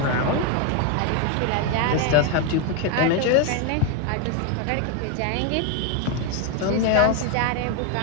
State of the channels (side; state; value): both; different; correlation 0.01